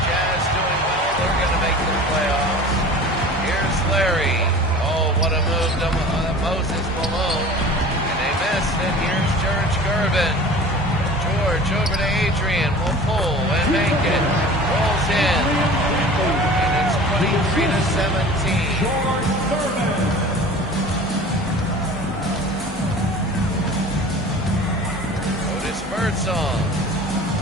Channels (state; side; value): normal; both; correlation 0.40